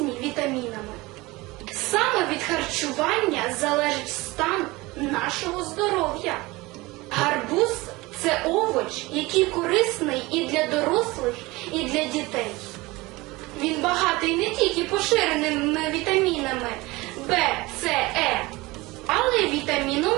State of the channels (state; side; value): quieter; left; 21.7 dB